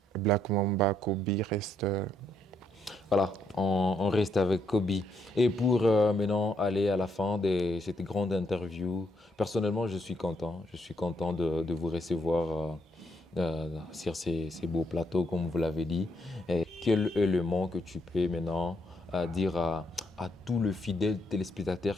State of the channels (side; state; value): both; normal; correlation 0.74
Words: Black Mamba, Kobe reste. voilà, on reste avec Kobe. Et pour maintenant aller à la fin de cette grande interview, personnellement, je suis content. Je suis content de vous recevoir sur ces beaux plateaux, comme vous l'avez dit. Et quel élément que tu peux maintenant dire à tous les fidèles téléspectateurs